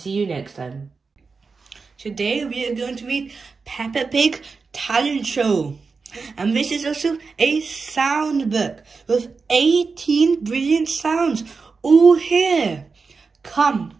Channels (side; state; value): left; quieter; 4.7 dB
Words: you next time. Today we are going to read Peppa Pig Talent Show. And this is also a sound book with 18 brilliant sounds all here. Come,